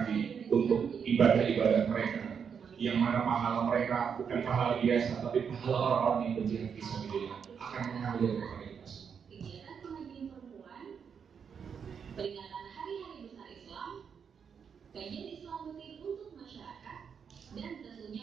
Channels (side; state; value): left; quieter; 6.9 dB